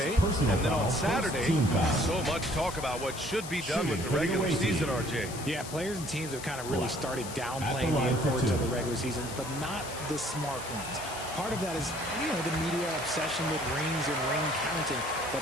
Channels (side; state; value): left; noise; hiss, 11 dB below the sound